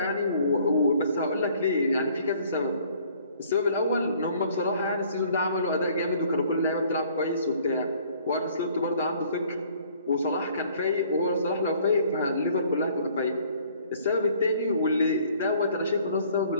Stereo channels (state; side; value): inverted; both; correlation -0.58